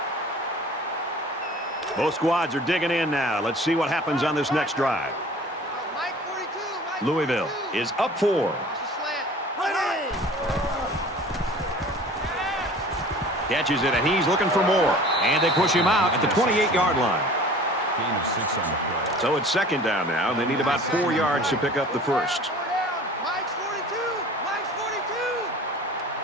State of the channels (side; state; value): both; normal; correlation 0.45